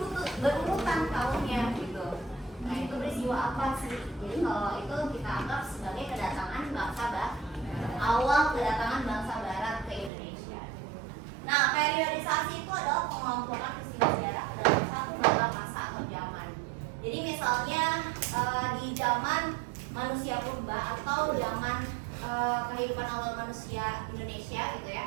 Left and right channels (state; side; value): drops out; left; at 10.1 s